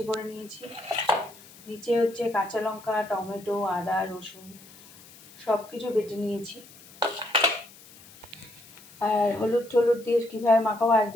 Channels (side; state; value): left; noise; hiss, 22 dB below the sound